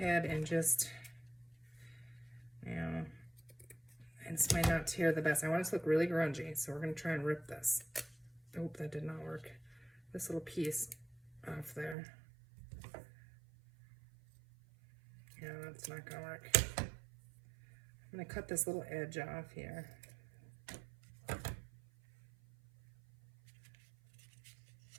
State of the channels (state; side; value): drops out; left; at 12.0 s